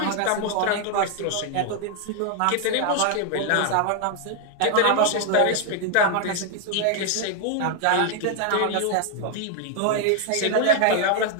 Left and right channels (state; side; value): different; both; correlation 0.00